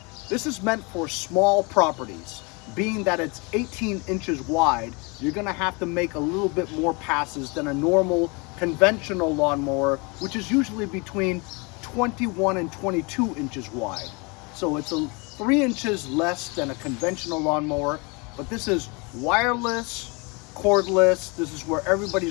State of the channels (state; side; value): quieter; right; 29.4 dB